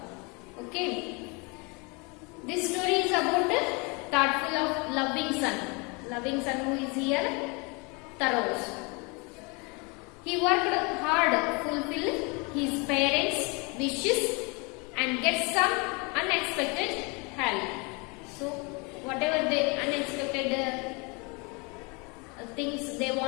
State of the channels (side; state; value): right; quieter; 30.0 dB